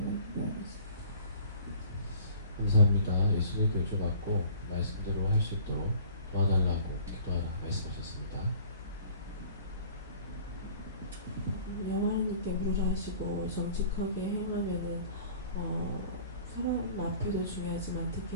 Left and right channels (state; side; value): inverted; both; correlation -0.50